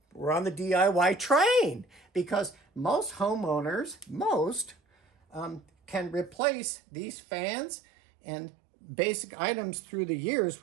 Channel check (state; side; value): drops out; left; at 6.4 s